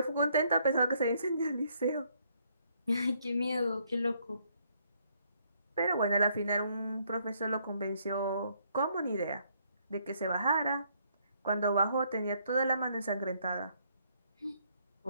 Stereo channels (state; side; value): inverted; both; correlation -0.69